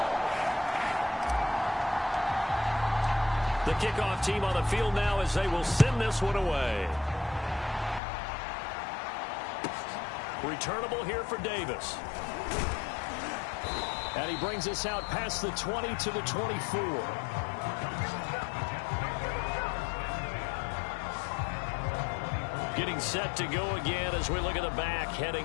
The kickoff team on the field now as they will send this one away. Returnable here for Davis. And he brings us out past the 20 to the 24. Getting set to go again as we look at the back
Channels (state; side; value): drops out; right; at 8.0 s